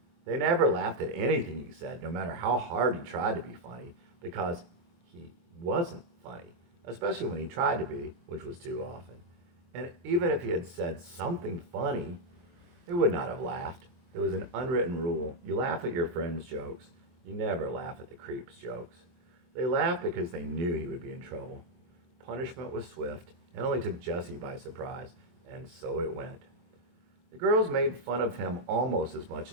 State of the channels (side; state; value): left; late; 23 ms